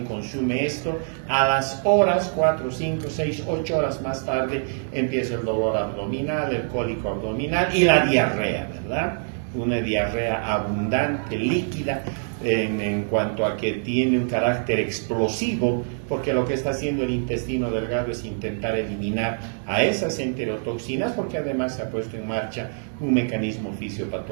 consume esto, a las horas, 4, 5, 6, 8 horas más tarde, empieza el dolor abdominal, el cólico abdominal y la diarrea, ¿verdad? Una diarrea abundante, líquida, en cuanto a que tiene un carácter explosivo, porque lo que está haciendo el intestino delgado es intentar eliminar a esas enterotoxinas, porque además se ha puesto en marcha un mecanismo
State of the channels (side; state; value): left; silent; digital silence